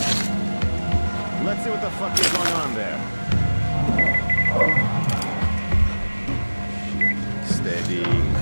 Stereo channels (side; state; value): both; inverted; correlation -1.00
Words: Let's see what the fuck is going on there. Steady.